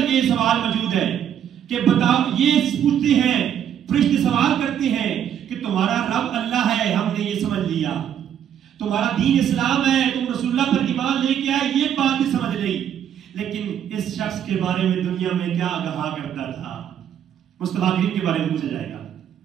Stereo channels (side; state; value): left; quieter; 9.5 dB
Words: یہ سوال موجود ہے کہ بتاؤ، یہ پوچھتے ہیں فرشتے سوال کرتے ہیں کہ تمہارا رب اللہ ہے، ہم نے یہ سمجھ لیا، تمہارا دین اسلام ہے، تم رسول اللہ پر ایمان لے کے آئے، یہ بات بھی سمجھ لئی، لیکن اس شخص کے بارے میں دنیا میں کیا کہا کرتا تھا، مصطفیٰ کریم کے بارے میں پوچھا جائے گا۔